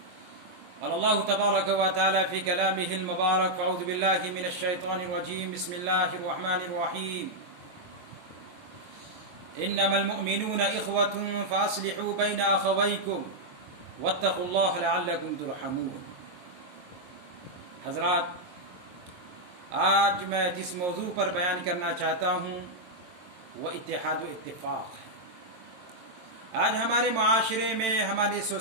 قال الله تبارك وتعالى في كلامه المبارك: فأعوذ بالله من الشيطان الرجيم بسم الله الرحمن الرحيم إنما المؤمنون إخوة فأصلحوا بين أخويكم واتقوا الله لعلكم ترحمون. حضرات، آج میں جس موضوع پر بیان کرنا چاہتا ہوں وہ اتحاد و اتفاق ہے. آج ہمارے معاشرے میں، ہماری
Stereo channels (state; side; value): late; left; 22 ms